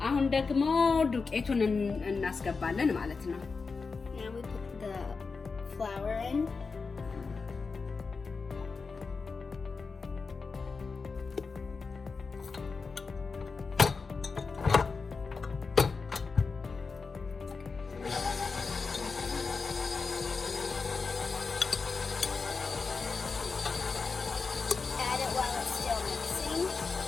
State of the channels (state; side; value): quieter; right; 4.6 dB